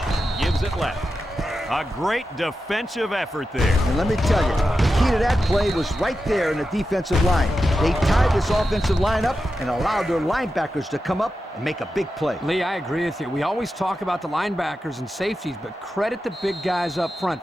gives it left. A great defensive effort there. And let me tell you, the key to that play was right there in the defensive line. They tied this offensive line up and allowed their linebackers to come up and make a big play. Lee, I agree with you. We always talk about the linebackers and safeties, but credit the big guys up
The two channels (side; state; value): both; normal; correlation 0.90